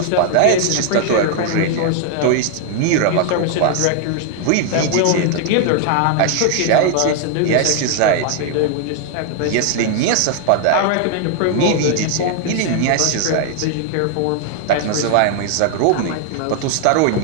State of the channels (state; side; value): different; both; correlation 0.00